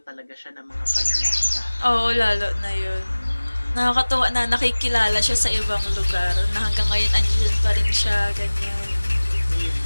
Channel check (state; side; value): inverted; both; correlation -1.00